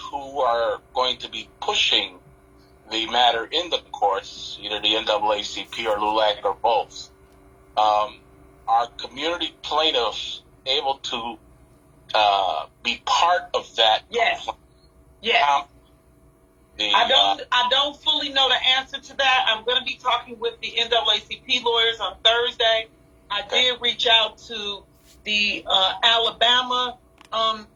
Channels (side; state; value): both; identical; correlation 1.00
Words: who are going to be pushing the matter in the courts, either the NAACP or LULAC or both, are community plaintiffs able to be part of that? Yes. Yes. I don't fully know the answer to that. I'm going to be talking with the NAACP lawyers on Thursday. I did reach out to the Alabama